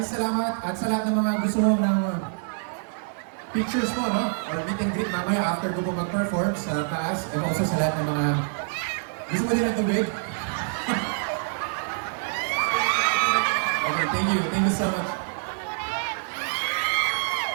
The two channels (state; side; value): silent; left; digital silence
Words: salamat at sa lahat ng mga gusto mo ng pictures mo, no? Or meet and greet mamaya after ko po mag-perform sa taas and also sa lahat ng mga gusto mo din ng tubig. Okay, thank you so much.